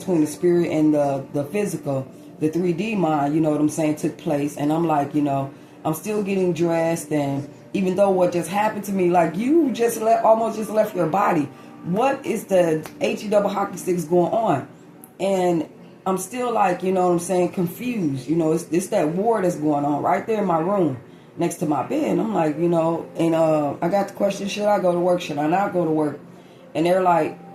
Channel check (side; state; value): both; identical; correlation 1.00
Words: the spirit and the physical, the 3D mind, what I'm saying, took place. And I'm like, I'm still getting dressed, and even though what just happened to me, like, you almost just left your body. What is the HE double hockey sticks going on? And I'm still like, what I'm saying, confused. It's that war that's going on right there in my room next to my bed. And I'm like, and I got the question, should I go to work? Should I not go to work? And they're like,